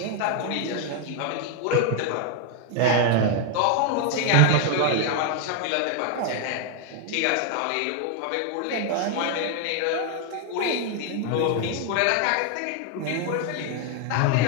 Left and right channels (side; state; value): both; different; correlation 0.01